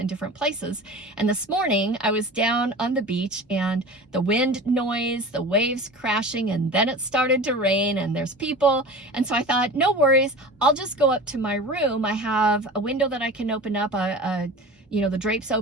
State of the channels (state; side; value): normal; both; correlation 0.35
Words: different places. And this morning I was down on the beach, and the wind noise, the waves crashing, and then it started to rain, and there's people. And so I thought, no worries, I'll just go up to my room. I have a window that I can open up, the drapes